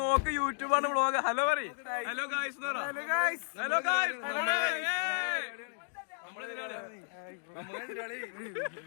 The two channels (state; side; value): silent; right; 55 dB below the other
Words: നോക്ക്, യൂട്യൂബാണ്, വ്ളോഗ്. ഹലോ പറ. ഹലോ ഗായ്സ് എന്ന് പറ. Hello guys. നമ്മളെതിരാളിയാ.